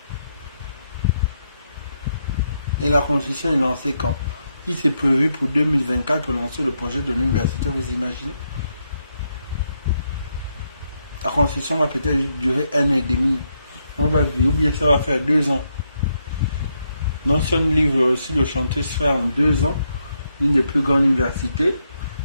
Et la Constitution est lancée quand? Il s'est prévu pour 2024 pour lancer le projet de l'université, vous imaginez? La Constitution va peut-être durer 1 an et demi. On va vivre, ou bien ça va faire 2 ans. Donc si on livre aussi le chantier se fait en 2 ans, une des plus grandes universités.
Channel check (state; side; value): inverted; both; correlation -0.80